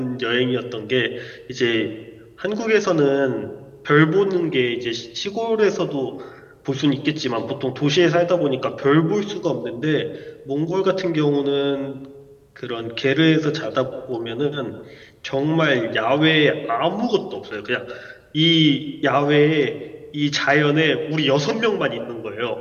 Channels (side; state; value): both; identical; correlation 1.00